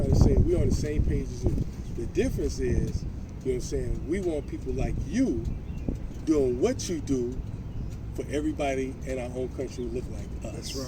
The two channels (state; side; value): identical; both; correlation 1.00